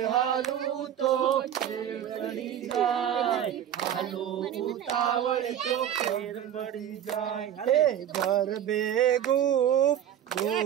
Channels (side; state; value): left; quieter; 10.3 dB